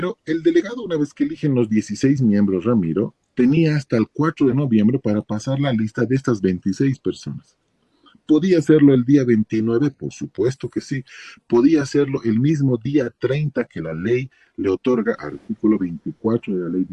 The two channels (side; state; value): both; identical; correlation 1.00